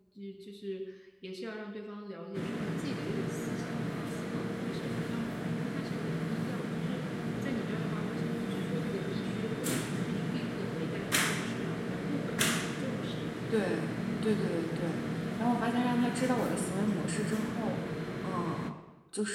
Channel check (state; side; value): identical; both; correlation 1.00